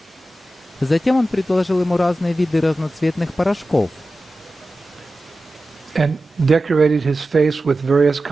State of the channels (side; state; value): both; normal; correlation 0.94